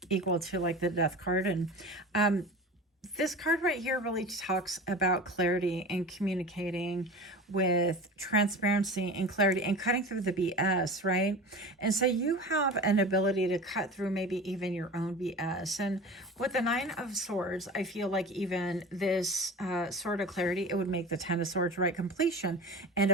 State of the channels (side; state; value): both; normal; correlation 0.33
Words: equal to like the death card. And this card right here really talks about clarity and communicating with transparency and clarity and cutting through the BS, right? And so you have an ability to cut through maybe even your own BS. And with the 9 of Swords, I feel like even this sort of clarity, it would make the 10 of Swords, right? Completion, end